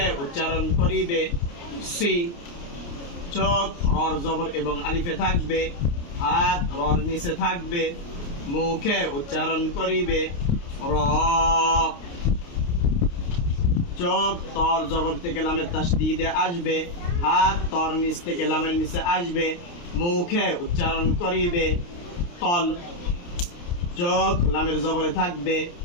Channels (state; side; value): late; right; 29 ms